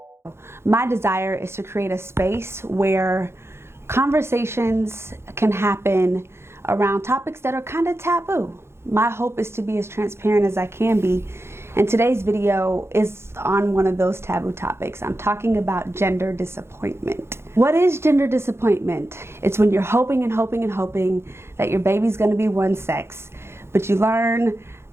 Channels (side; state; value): left; late; 0.12 ms